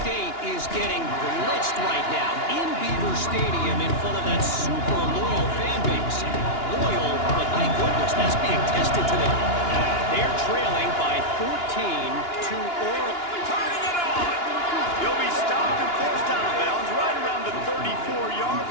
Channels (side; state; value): right; late; 2.9 ms